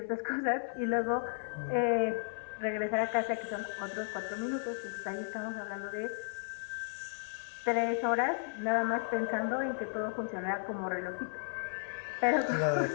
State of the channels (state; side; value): silent; right; 55 dB below the other